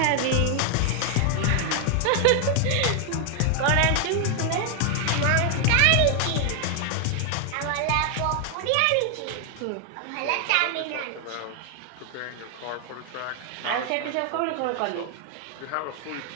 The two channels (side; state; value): both; different; correlation 0.00